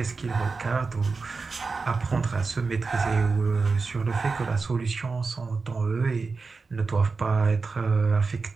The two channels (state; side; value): quieter; left; 4.4 dB